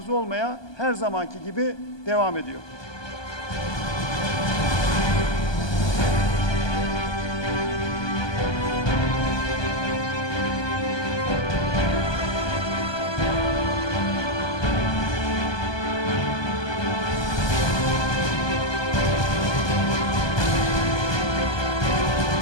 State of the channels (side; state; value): right; late; 1.2 ms